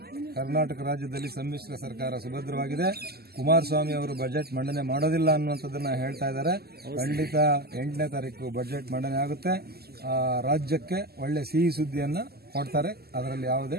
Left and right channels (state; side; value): late; left; 0.46 ms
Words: ಕರ್ನಾಟಕ ರಾಜ್ಯದಲ್ಲಿ ಸಮ್ಮಿಶ್ರ ಸರ್ಕಾರ ಸುಭದ್ರವಾಗಿದೆ. ಕುಮಾರಸ್ವಾಮಿ ಅವರು ಬಜೆಟ್ ಮಂಡನೆ ಮಾಡೋದಿಲ್ಲ ಅನ್ನುವಂಥದ್ದನ್ನ ಹೇಳ್ತಾ ಇದ್ದಾರೆ. ಖಂಡಿತ 8ನೇ ತಾರೀಕು ಬಜೆಟ್ ಮಂಡನೆ ಆಗುತ್ತೆ. ರಾಜ್ಯಕ್ಕೆ ಒಳ್ಳೆ ಸಿಹಿ ಸುದ್ದಿಯನ್ನ ಕೊಡ್ತಾರೆ, ಅದರಲ್ಲಿ ಯಾವುದೇ